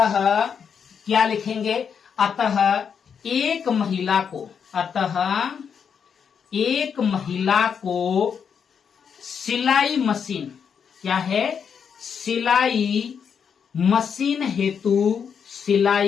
क्या लिखेंगे? अतः एक महिला को, अतः एक महिला को सिलाई मशीन, क्या है? सिलाई मशीन हेतु,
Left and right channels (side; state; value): right; quieter; 7.0 dB